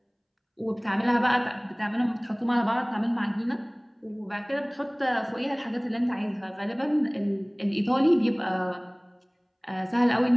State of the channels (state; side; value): identical; both; correlation 1.00